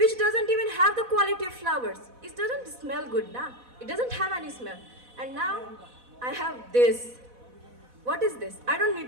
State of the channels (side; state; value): left; late; 4.1 ms